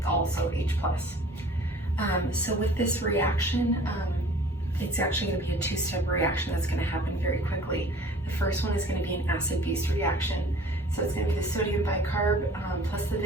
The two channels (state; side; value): normal; both; correlation 0.48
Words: also H+. So with this reaction, it's actually going to be a two-step reaction that's going to happen very quickly. The first one is going to be an acid-base reaction. So it's going to be the sodium bicarb plus the